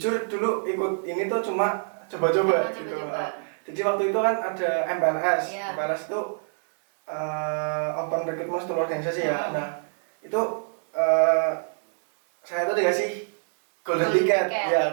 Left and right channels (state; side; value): silent; left; 61 dB below the other